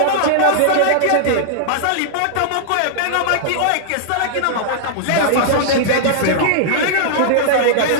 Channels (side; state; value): both; different; correlation -0.01